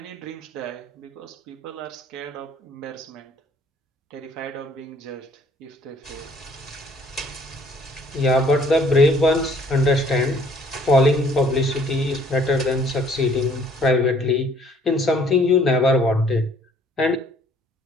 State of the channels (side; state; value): both; normal; correlation 0.59